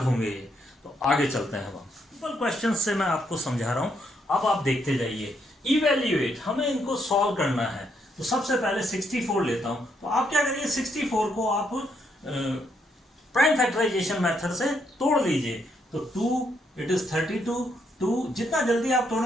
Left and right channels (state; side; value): normal; both; correlation 0.75